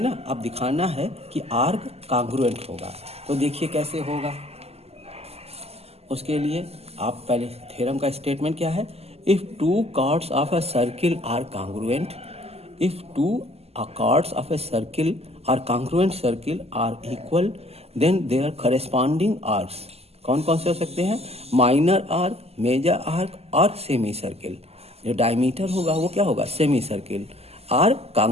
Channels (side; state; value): left; late; 0.29 ms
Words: अब दिखाना है कि आर्क कांग्रुएंट होगा, तो देखिए कैसे होगा। उसके लिए आप पहले थ्योरम का स्टेटमेंट क्या है, if two chords of a circle are congruent, if two chords of a circle are congruent circle are equal, then their corresponding arcs कौन कौन से हो सकते हैं, माइनर आर्क, मेजर आर्क और सेमी सर्किल। जो डायमीटर होगा वो क्या होगा, semicircle, are